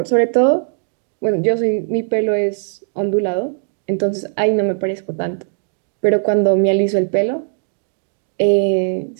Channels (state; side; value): silent; left; digital silence